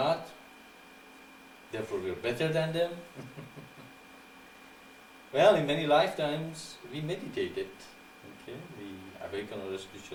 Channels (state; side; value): identical; both; correlation 1.00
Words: therefore we are better than them? Well, in many lifetimes we meditated, okay? We awakened our